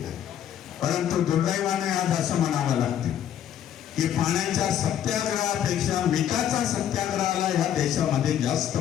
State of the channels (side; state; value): right; quieter; 10.2 dB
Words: परंतु दुर्दैवाने आज असं म्हणावं लागते की पाण्याच्या सत्याग्रहापेक्षा मिठाचा सत्याग्रहाला ह्या देशामध्ये जास्त